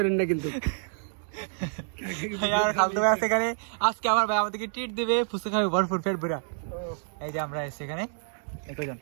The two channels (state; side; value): silent; left; digital silence